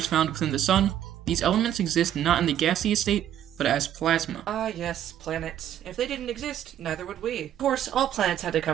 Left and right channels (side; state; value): left; quieter; 10.9 dB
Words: found within the sun, these elements exist not in the gaseous state, but as plasma. Ah yes, planets. If they didn't exist, neither would we. Of course, all planets had to